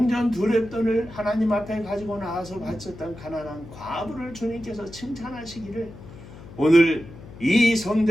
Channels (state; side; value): noise; left; hum, 17 dB below the sound